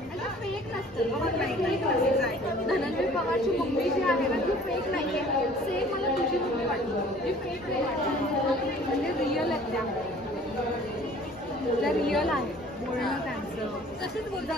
फेक नसतं धनंजय पवारची मम्मी जी आहे ना ती फेक नाही आहे सेम मला तुझी मम्मी वाटते जी फेक नाही वाटते म्हणजे रिअल आहेत त्या रिअल आहे बोलणं त्यांचं तसेच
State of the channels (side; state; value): both; normal; correlation 0.51